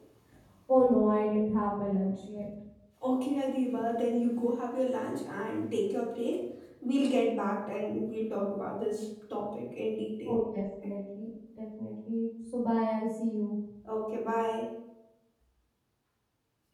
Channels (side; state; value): both; identical; correlation 1.00